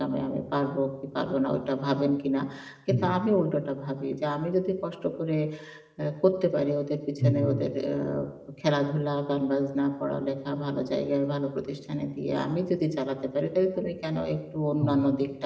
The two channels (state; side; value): identical; both; correlation 1.00